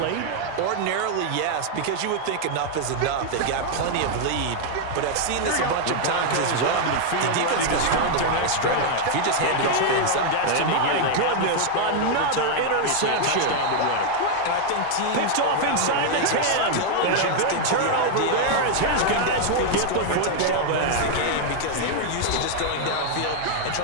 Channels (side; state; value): both; different; correlation 0.00